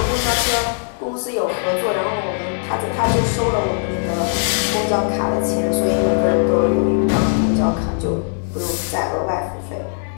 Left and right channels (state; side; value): silent; right; digital silence